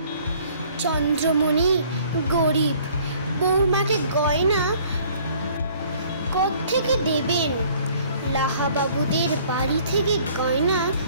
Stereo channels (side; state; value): both; inverted; correlation -0.56